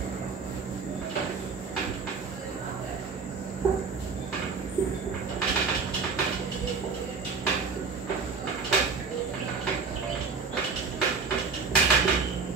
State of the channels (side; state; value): left; quieter; 5.0 dB